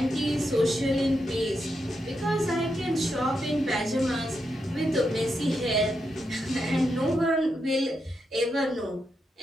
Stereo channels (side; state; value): both; normal; correlation 0.84